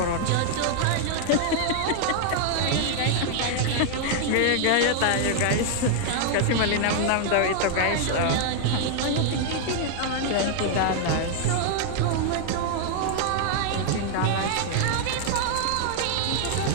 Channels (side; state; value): both; different; correlation 0.00